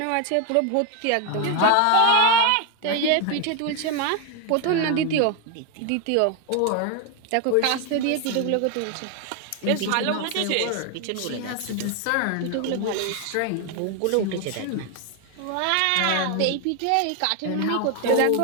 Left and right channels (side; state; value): both; different; correlation 0.01